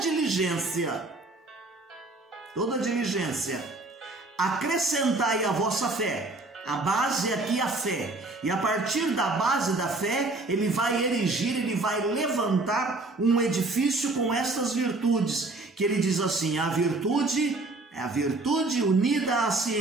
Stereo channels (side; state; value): left; quieter; 3.1 dB